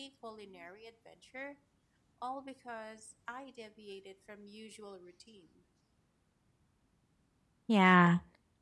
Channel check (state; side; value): identical; both; correlation 1.00